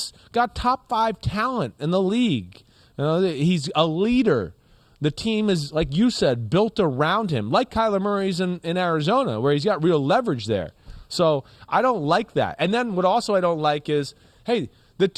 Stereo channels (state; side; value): identical; both; correlation 1.00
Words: got top 5 talent in the league. He's a leader. The team is, like you said, built around him, like Kyler Murray's in Arizona, where he's got real leverage there. So I don't like that. And then what also I don't like is, hey, the